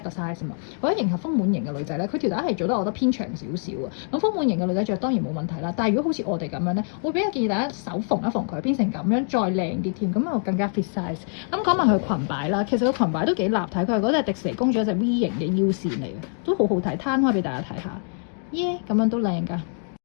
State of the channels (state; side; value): silent; right; 57 dB below the other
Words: 個 size 嘛，為咗迎合豐滿型嘅女仔咧，佢條帶係做得我覺得偏長少少啊。咁豐滿型嘅女仔着當然冇問題啦，但係如果好似我哋咁樣咧，會比較建議大家手縫一縫佢，變成咁樣再靚啲添，咁又更加 fit size。咁講埋佢裙擺啦，其實個裙擺都幾立體，佢係嗰隻迪士尼公主一隻 V 型嘅腰線嚟嘅，都好好睇，攤開俾大家睇下，耶，咁樣都靚㗎。